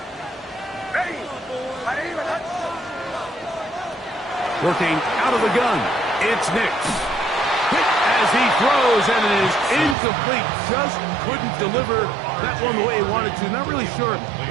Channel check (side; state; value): left; drops out; at 10.0 s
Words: Working out of the gun, it's Nix. Hit as he throws, and it is incomplete. Just couldn't deliver that one the way he wanted to. Not really sure